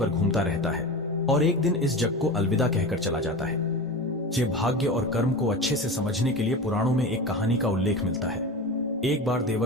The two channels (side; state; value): both; normal; correlation 0.28